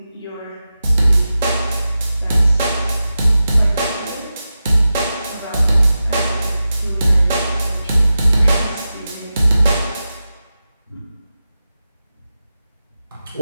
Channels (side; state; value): both; inverted; correlation -0.92